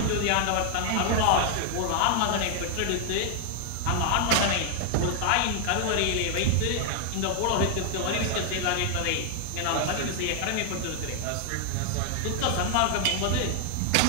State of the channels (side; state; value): both; different; correlation 0.00